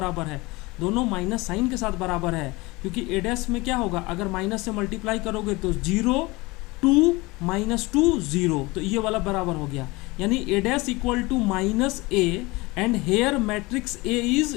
है, दोनों माइनस साइन के साथ बराबर है, क्योंकि ए डैश में क्या होगा, अगर माइनस से मल्टीप्लाई करोगे तो 0 2 -2 0, तो ये वाला बराबर हो गया। यानी A dash equal to -a and here matrix A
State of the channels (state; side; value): quieter; right; 23.1 dB